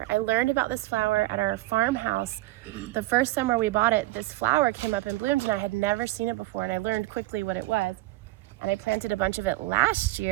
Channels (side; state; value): left; quieter; 18.6 dB